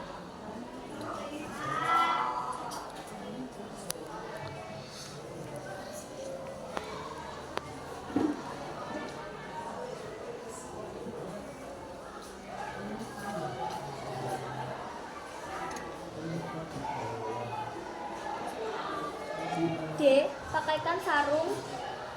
D. Pakaikan sarung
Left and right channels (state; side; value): identical; both; correlation 1.00